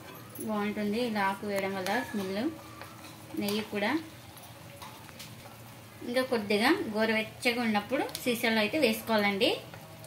బాగుంటుంది ఇలా ఆకు వేయడం వల్ల స్మెల్. నెయ్యి కూడా ఇంకా కొద్దిగా గోరువెచ్చగా ఉన్నప్పుడు సీసాలో అయితే వేసుకోవాలండి.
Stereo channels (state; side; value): identical; both; correlation 1.00